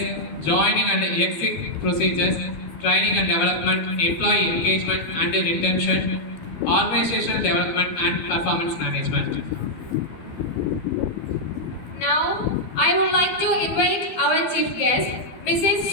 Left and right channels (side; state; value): right; late; 13 ms